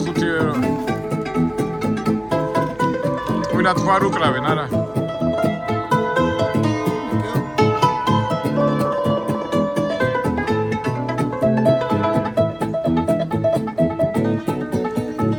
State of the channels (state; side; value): noise; right; hum, 26 dB below the sound